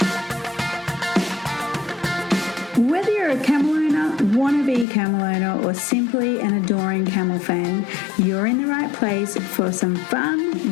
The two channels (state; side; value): drops out; right; at 4.9 s